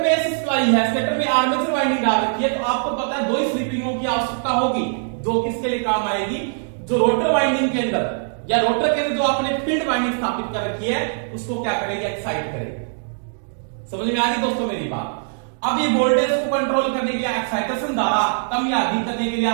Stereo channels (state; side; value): silent; left; digital silence